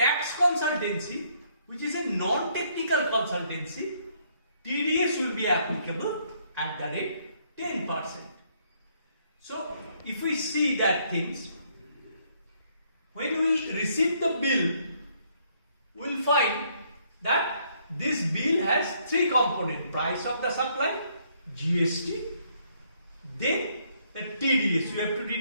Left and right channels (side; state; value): both; inverted; correlation -0.69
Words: consultancy, which is a non-technical consultancy, TDS will be applicable at the rate 10%. So if we see that things, when we receive the bill, we will find that this bill has three components: price of the supply, GST, then the TDS we have to